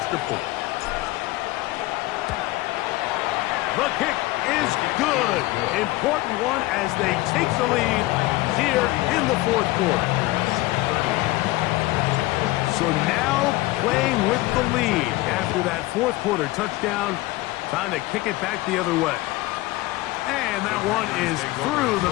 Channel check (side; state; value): right; quieter; 19.3 dB